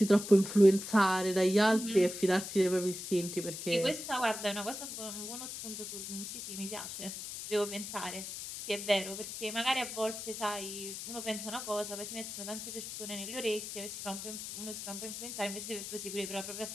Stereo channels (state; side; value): noise; left; hiss, 8 dB below the sound